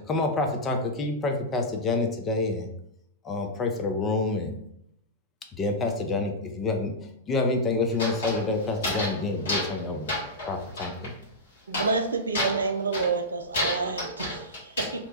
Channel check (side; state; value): both; normal; correlation -0.09